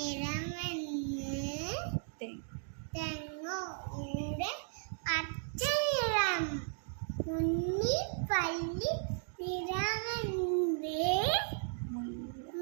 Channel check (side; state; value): left; silent; digital silence